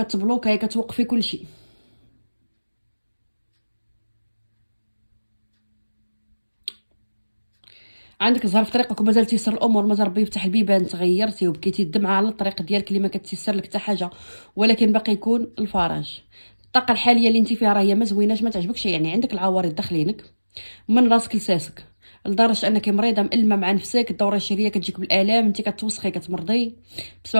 كتوقفي كلشي. عندك زهر في طريقك ومازال تيسر الامور، مازال ربي يفتح البيبان، تغيرتي وبكيتي الدمعه على الطريق ديالك اللي ما كتيسر لك حتى حاجه، ولكن باقي يكون الفرج. الطاقه الحاليه اللي انت فيها راه هي ما زويناش، ما تعجبكش، يعني عندك العوارض داخلينك من راسك لساسك، لدرجه انك مريضه مألمه مع نفسك، الدوره الشهريه كتجيك بالالام، انت كتوسخي كتمرضي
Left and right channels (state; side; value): inverted; both; correlation -1.00